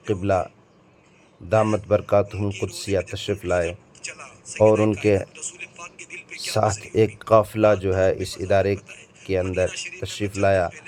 قبلہ دامت برکاتہم قدسیہ تشریف لائے اور ان کے ساتھ ایک قافلہ جو ہے اس ادارے کے اندر تشریف لایا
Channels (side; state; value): both; identical; correlation 1.00